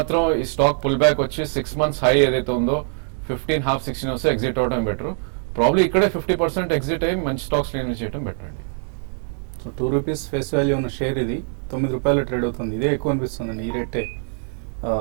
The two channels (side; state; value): left; silent; 64 dB below the other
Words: ఈ స్టాక్ పుల్ బ్యాక్ వచ్చి 6 months హై ఏదైతే ఉందో 15.5-16 వస్తే ఎగ్జిట్ అవడం బెటర్. ప్రాబ్లీ ఇక్కడే 50% ఎగ్జిట్ అయ్యి మంచి స్టాక్స్ ఇన్వెస్ట్ చేయడం బెటర్ అండి. సో 2 రూపీస్ ఫేస్ వాల్యూ ఉన్న షేర్ ఇది 9 రూపాయలు ట్రేడ్ అవుతుంది. ఇదే ఎక్కువ అనిపిస్తుంది. ఈ రేటే